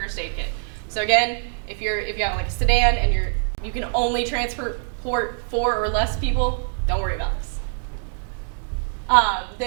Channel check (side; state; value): left; silent; digital silence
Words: aid kit. So again, if you have like a sedan and you can only transport 4 or less people, don't worry about this.